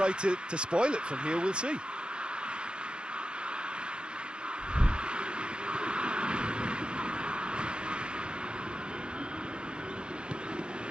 to spoil it from here, we'll see.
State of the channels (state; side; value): late; left; 0.052 ms